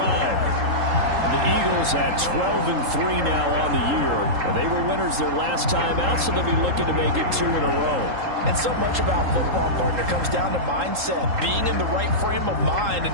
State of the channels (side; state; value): left; late; 3.8 ms